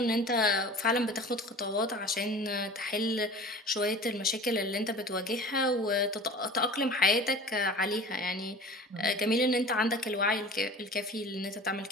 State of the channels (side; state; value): both; normal; correlation 0.40